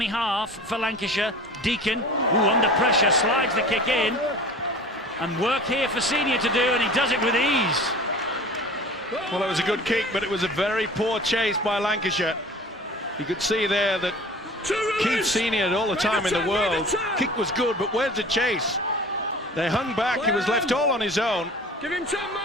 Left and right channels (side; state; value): both; normal; correlation 0.41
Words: half for Lancashire. Deacon, under pressure, slides the kick in, and work here for Senior to do, and he does it with ease. Well, it was a good kick, but it was a very poor chase by Lancashire. You could see there that Keith Senior had all the time in the world. Kick was good, but where's the chase? They hung back, he was left all on his own. Give him time,